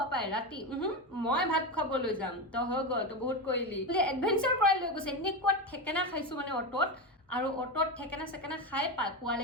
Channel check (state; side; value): normal; both; correlation 0.15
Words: পাপাই ৰাতি মই ভাত খাবলৈ যাম, তো হৈ গ'ল, তো বহুত কৰিলি বোলে, এডভেঞ্চাৰ কৰাই লৈ গৈছে। এনেকুৱা ঠেকেনা খাইছোঁ মানে অটত, আৰু অটত ঠেকেনা চেকেনা খাই